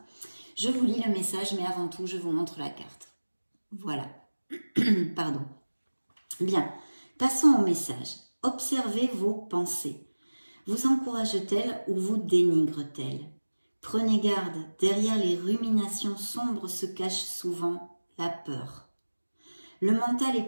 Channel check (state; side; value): inverted; both; correlation -1.00